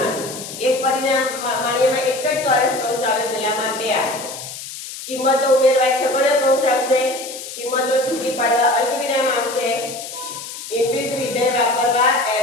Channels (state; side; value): noise; left; hiss, 11 dB below the sound